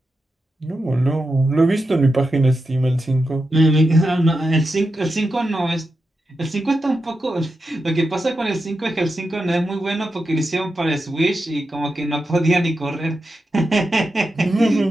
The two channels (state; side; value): normal; both; correlation 0.88